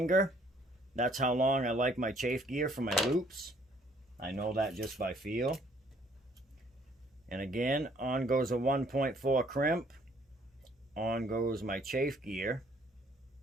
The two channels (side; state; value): both; normal; correlation 0.62